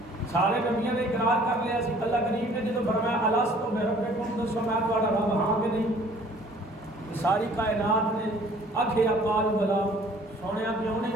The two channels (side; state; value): both; normal; correlation 0.54